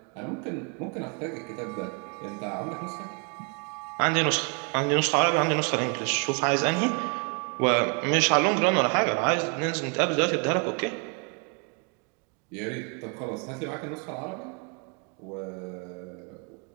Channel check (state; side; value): quieter; left; 36.0 dB